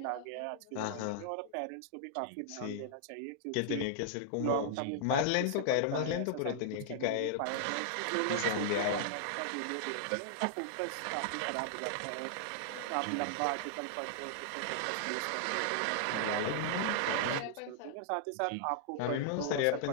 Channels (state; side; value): different; both; correlation -0.01